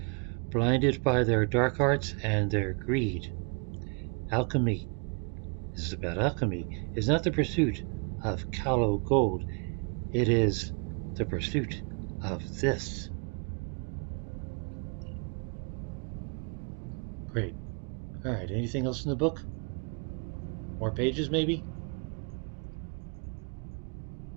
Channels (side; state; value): left; quieter; 36.7 dB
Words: blinded by their dark arts and their greed. Alchemy, this is about alchemy, is not the pursuit of callow gold. It is the pursuit of this. Great. Alright, anything else in the book? More pages, maybe?